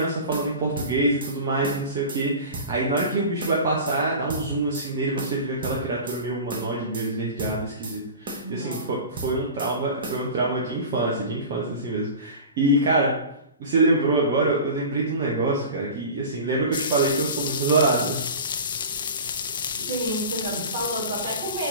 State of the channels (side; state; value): both; inverted; correlation -0.34